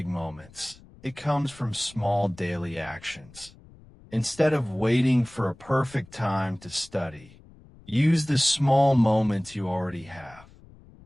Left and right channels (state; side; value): noise; left; rumble, 23 dB below the sound